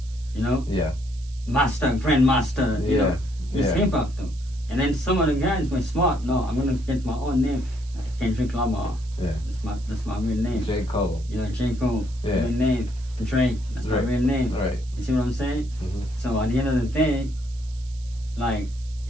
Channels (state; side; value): noise; right; hiss, 23 dB below the sound